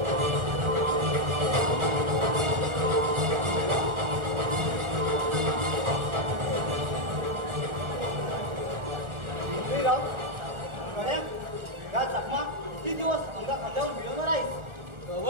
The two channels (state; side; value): late; left; 1.4 ms